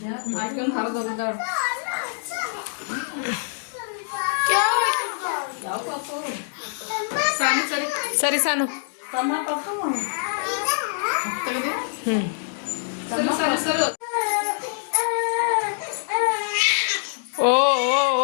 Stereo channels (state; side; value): silent; right; digital silence